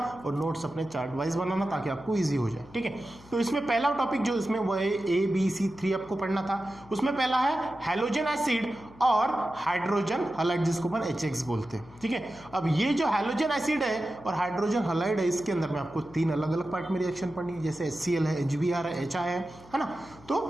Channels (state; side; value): noise; left; hum, 22 dB below the sound